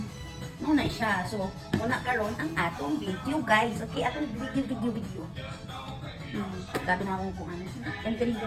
Muna siya. So, muna karon ang atong video, guys. Okay, atong video. Gabi na akong kung ano. And ganito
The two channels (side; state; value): both; identical; correlation 1.00